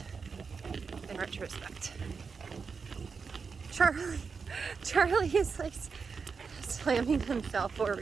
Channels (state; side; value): quieter; left; 5.3 dB